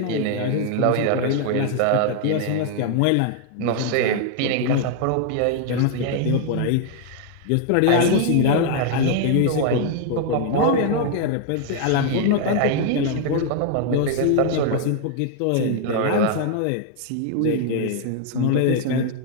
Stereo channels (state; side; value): different; both; correlation 0.00